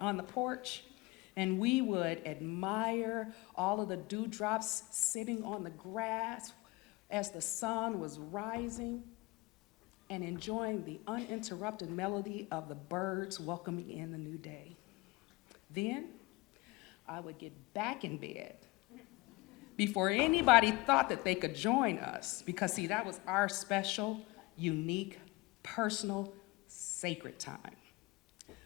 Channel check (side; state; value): right; quieter; 22.7 dB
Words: the porch, and we would admire all of the dewdrops sitting on the grass as the sun was rising, and enjoying the uninterrupted melody of the birds welcoming in the new day. Then, I would get back in bed before anybody thought that they could join us, because see, that was our special, unique, personal, sacred time.